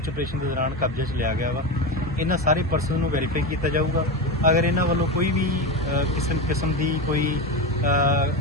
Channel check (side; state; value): both; normal; correlation 0.19